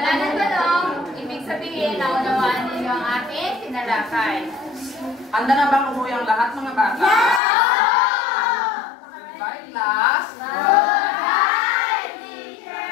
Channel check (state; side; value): drops out; right; at 7.4 s